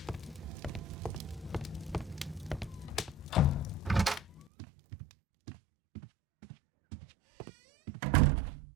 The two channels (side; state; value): left; drops out; at 4.5 s